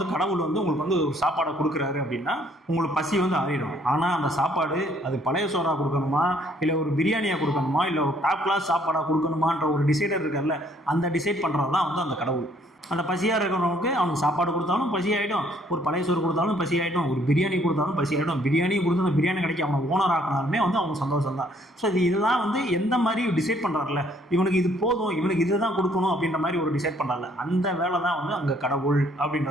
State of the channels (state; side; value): normal; both; correlation 0.64